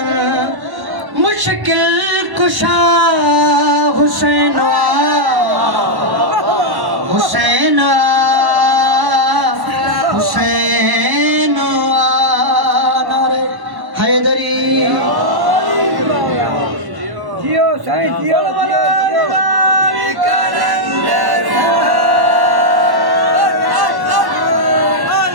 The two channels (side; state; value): left; late; 1.1 ms